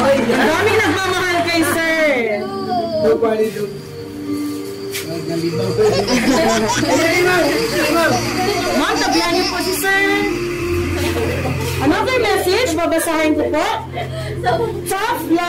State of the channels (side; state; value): both; identical; correlation 1.00